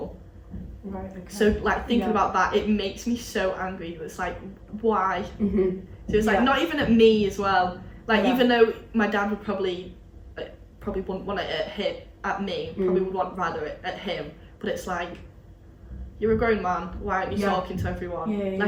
Right. Okay. So like thinking about that, it makes me so angry. It's like, why? So it's like not even at me as well. Like even though my dad would probably wouldn't want it at me, probably would want rather it at him. But it's like, you're a grown man, why aren't you talking to everyone?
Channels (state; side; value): identical; both; correlation 1.00